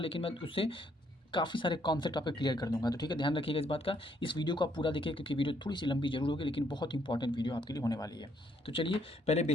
मैं उससे काफ़ी सारे कॉन्सेप्ट आपको क्लियर कर दूंगा। तो ठीक है, ध्यान रखिएगा इस बात का। इस वीडियो को आप पूरा देखिए, क्योंकि वीडियो थोड़ी सी लंबी जरूर होगी, लेकिन बहुत इंपॉर्टेंट वीडियो आपके लिए होने वाली है। तो चलिए पहले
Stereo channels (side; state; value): both; normal; correlation 0.70